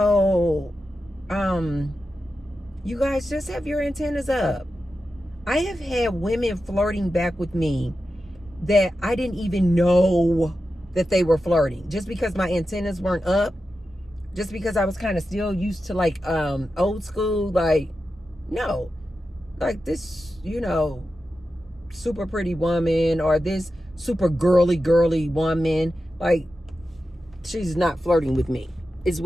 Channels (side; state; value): both; normal; correlation 0.91